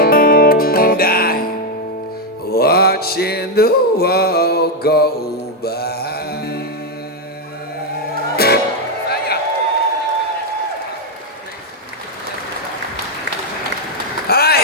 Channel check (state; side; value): normal; both; correlation 0.03